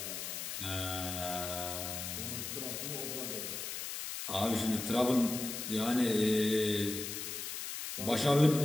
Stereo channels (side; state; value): left; noise; hiss, 5 dB below the sound